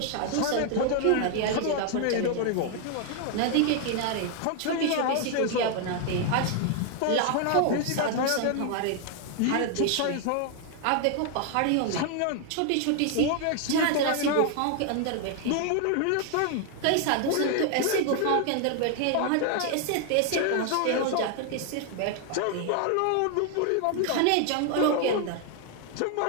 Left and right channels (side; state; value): both; different; correlation 0.00